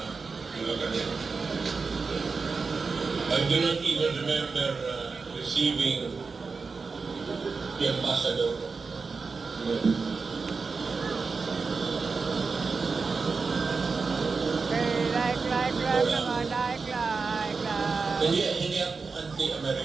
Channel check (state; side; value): quieter; left; 4.6 dB